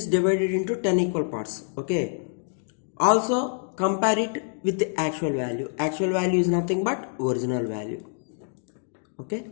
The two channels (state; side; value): silent; right; digital silence